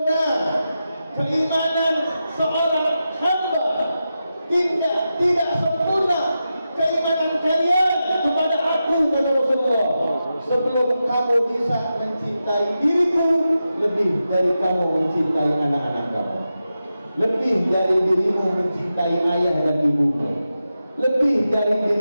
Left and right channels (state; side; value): inverted; both; correlation -0.90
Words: keimanan seorang hamba, tidak sempurna keimanan kalian kepada aku, kata Rasulullah, sebelum kamu bisa mencintai diriku lebih dari kamu mencintai anak-anak kamu, lebih dari dirimu mencintai ayah dan ibumu, lebih dari